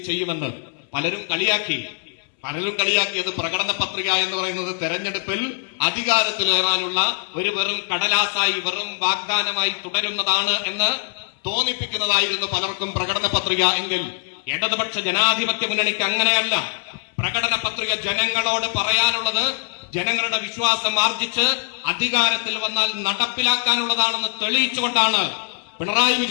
ചെയ്യുമെന്ന്. പലരും കളിയാക്കിയത് പ്രകടന പത്രിക എന്ന് പറയുന്നത് തെരഞ്ഞെടുപ്പിൽ അധികാരത്തിലേറാനുള്ള ഒരു വെറും കടലാസായി, വെറും വാഗ്ദാനമായി തുടരുന്നതാണ് എന്ന് തോന്നിപ്പിക്കുന്നതായിരുന്നു പലർക്കും പ്രകടന പത്രിക. എങ്കിൽ ഇടതുപക്ഷ ജനാധിപത്യ മുന്നണിക്ക് അങ്ങനെയല്ല. പ്രകടന പത്രിക ജനങ്ങളോട് പറയാനുള്ളത് ജനങ്ങളുടെ വിശ്വാസം ആർജിച്ച് അധികാരത്തിൽ വന്നാൽ നടപ്പിലാക്കാനുള്ളതാണെന്ന് തെളിയിച്ചുകൊണ്ടാണ് പിണറായി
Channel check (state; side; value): silent; right; 64 dB below the other